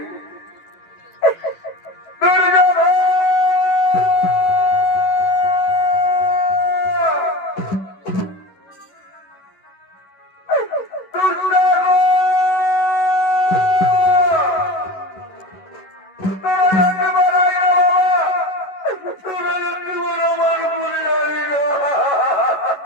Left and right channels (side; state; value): right; late; 11 ms